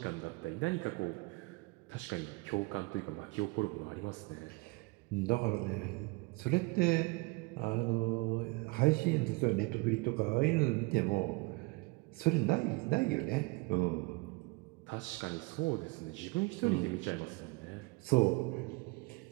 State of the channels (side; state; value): left; quieter; 26.2 dB